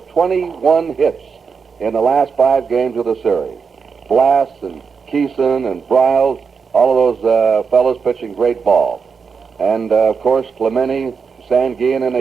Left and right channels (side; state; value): left; quieter; 5.7 dB